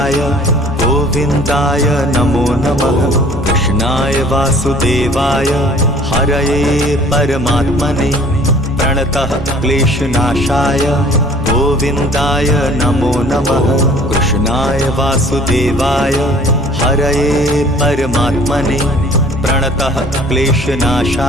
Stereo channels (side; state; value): both; normal; correlation 0.52